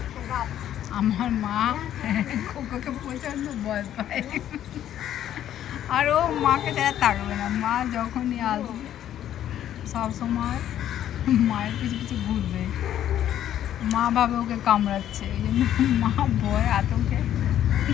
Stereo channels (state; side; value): quieter; right; 11.2 dB